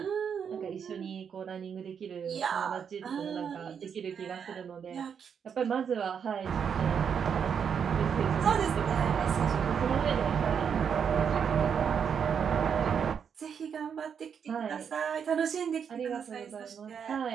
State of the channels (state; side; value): quieter; left; 7.3 dB